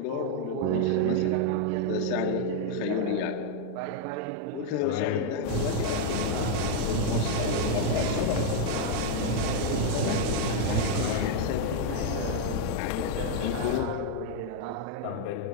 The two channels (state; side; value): different; both; correlation 0.00